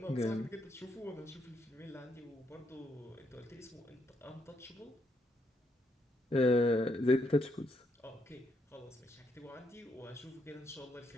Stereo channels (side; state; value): both; normal; correlation 0.76